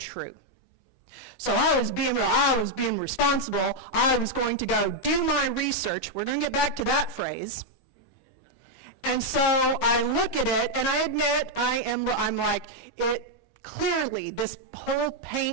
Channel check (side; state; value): right; late; 22 ms